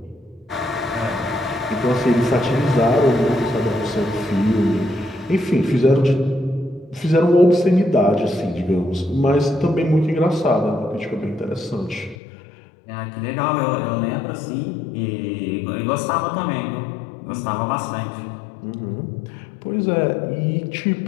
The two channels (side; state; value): right; drops out; at 12.2 s